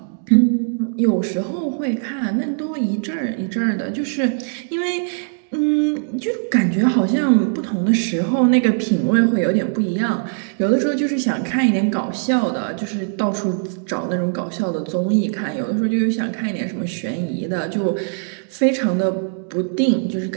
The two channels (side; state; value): left; silent; digital silence